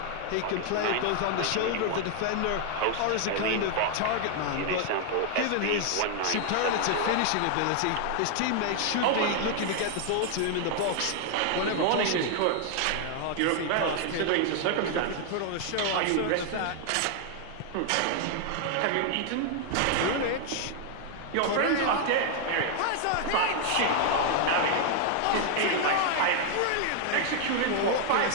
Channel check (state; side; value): different; both; correlation 0.00